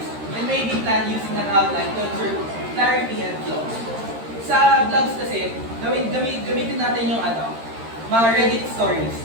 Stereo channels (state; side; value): late; left; 13 ms